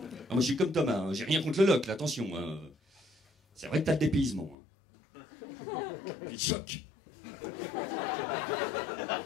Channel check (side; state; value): right; drops out; at 4.5 s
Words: moi, je suis comme Thomas, hein. J'ai rien contre le Locle, attention. Hein. C'est vrai que t'as le dépaysement. Hein. Puis le choc.